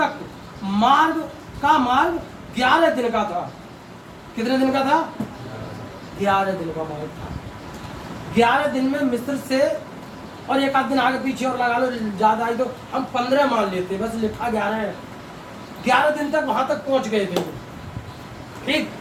मार्ग 11 दिन का था। कितने दिन का था? 11 दिन का मार्ग था। 11 दिन में मिस्र से, और एक आध दिन आगे पीछे और लगा लो, ज्यादा आई तो हम 15 मान लेते, बस लिखा 11 है। 11 दिन तक वहां तक पहुंच गए थे। ठीक,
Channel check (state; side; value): identical; both; correlation 1.00